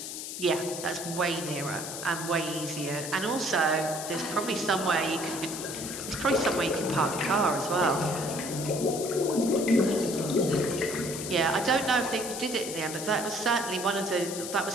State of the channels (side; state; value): left; noise; hiss, 7 dB below the sound